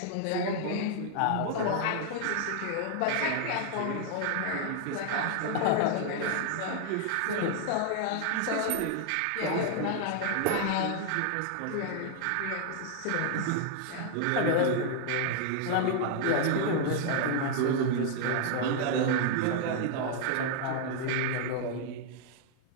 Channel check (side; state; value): both; different; correlation 0.00